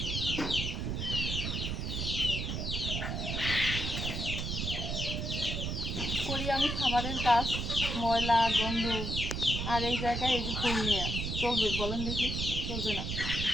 করি আমি খাবারের কাজ, ময়লা গন্ধ। আর এই জায়গায় এই যে ফুল নিয়ে চলবে বলেন দেখি? চলবে না,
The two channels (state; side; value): noise; right; rumble, 2 dB below the sound